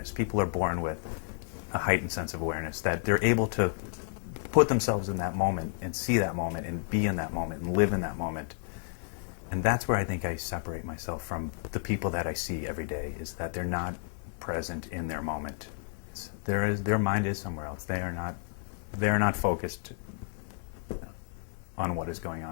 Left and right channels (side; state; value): right; silent; digital silence